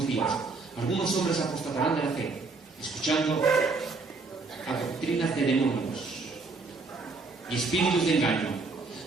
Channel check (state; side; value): quieter; left; 3.9 dB